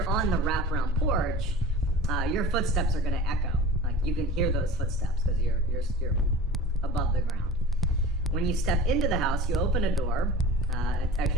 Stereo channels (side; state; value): both; normal; correlation 0.38